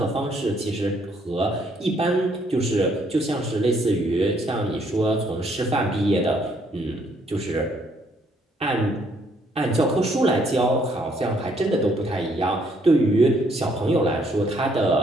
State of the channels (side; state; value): both; normal; correlation 0.68